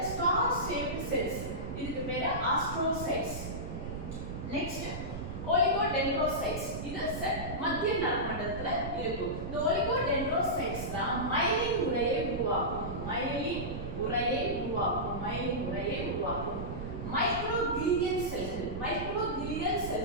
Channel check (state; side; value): noise; right; rumble, 6 dB below the sound